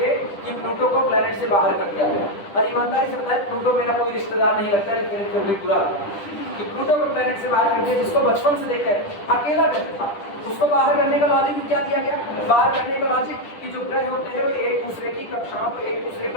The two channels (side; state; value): right; late; 10 ms